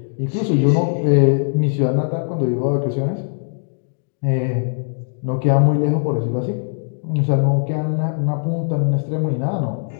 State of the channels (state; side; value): silent; right; digital silence